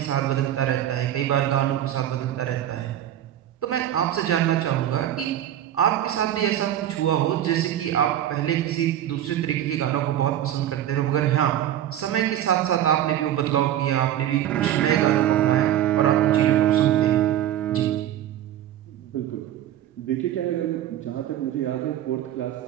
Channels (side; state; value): left; quieter; 11.6 dB